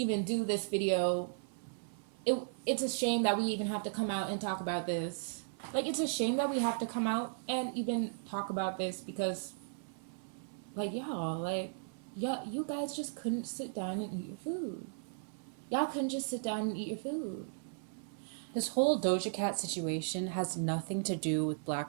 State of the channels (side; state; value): left; silent; 54 dB below the other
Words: do this video. It's a shame that we even have to come out and talk about this. Like it's a shame that we have to come out and even talk about this because, like y'all, like yeah, you guys just couldn't sit down and eat your food. Y'all couldn't just sit down and eat your food. This whole Doja Cat situation has nothing to do with